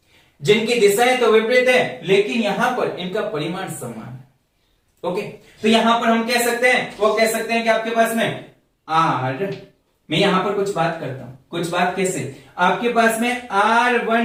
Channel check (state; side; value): identical; both; correlation 1.00